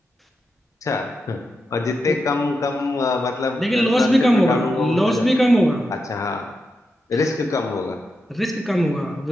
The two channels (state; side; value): normal; both; correlation 0.87